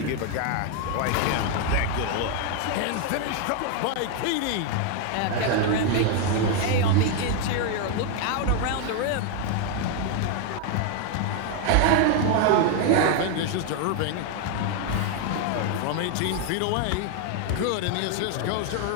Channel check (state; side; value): different; both; correlation 0.00